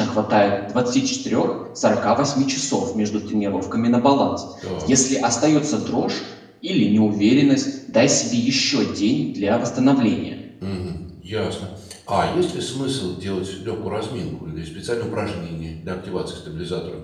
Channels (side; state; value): both; identical; correlation 1.00